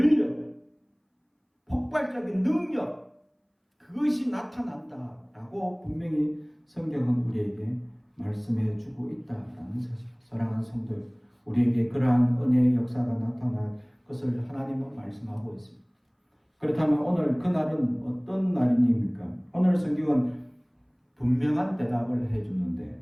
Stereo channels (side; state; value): both; identical; correlation 1.00